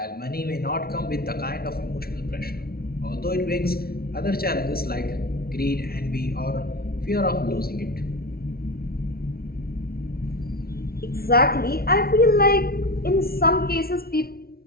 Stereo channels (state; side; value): late; right; 0.44 ms